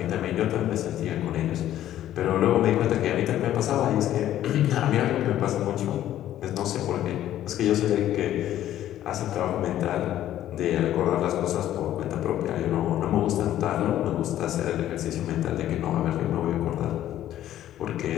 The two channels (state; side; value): quieter; right; 12.4 dB